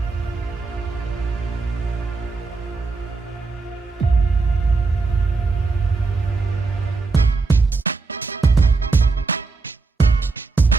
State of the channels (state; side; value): quieter; left; 4.0 dB